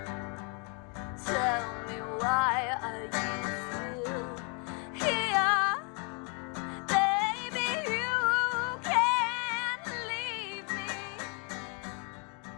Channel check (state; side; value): quieter; right; 33.3 dB